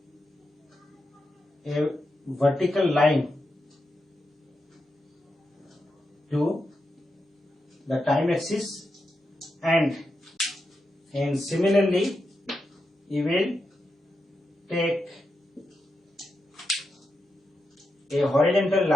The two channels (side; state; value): both; normal; correlation 0.86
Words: a vertical line to the time axis, and similarly you will take a horizontal